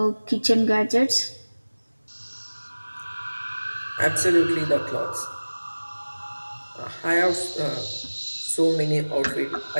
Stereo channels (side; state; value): both; inverted; correlation -1.00